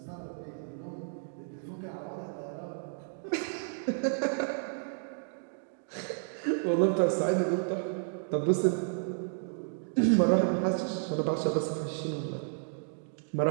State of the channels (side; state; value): left; silent; digital silence